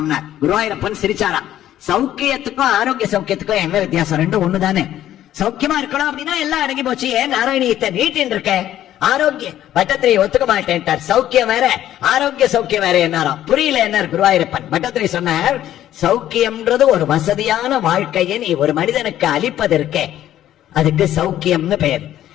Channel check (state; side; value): quieter; right; 12.3 dB